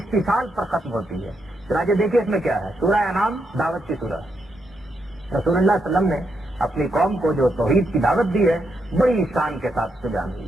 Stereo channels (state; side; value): normal; both; correlation 0.81